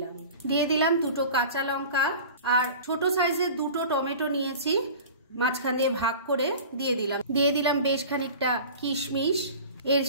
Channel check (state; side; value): inverted; both; correlation -0.38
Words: দিলাম 2 কাঁচা লঙ্কা আর ছোট সাইজের 2 টমেটো নিয়েছি, মাঝখান দিয়ে ভাগ করে দিয়ে দিলাম বেশ খানিকটা কিশমিশ। এর